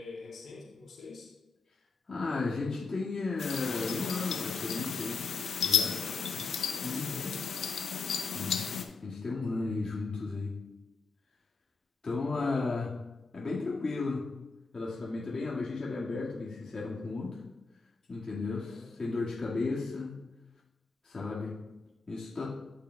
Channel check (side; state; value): right; quieter; 4.3 dB